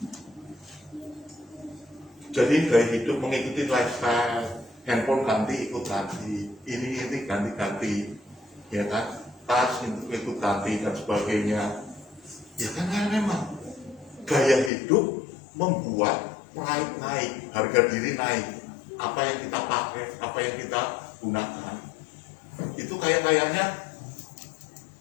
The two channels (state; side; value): drops out; right; at 14.7 s